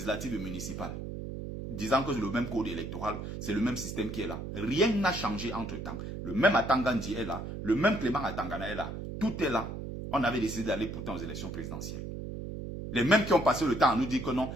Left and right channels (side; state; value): right; noise; hum, 7 dB below the sound